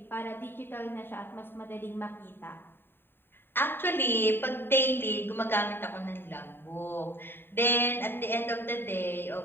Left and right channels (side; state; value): right; late; 0.10 ms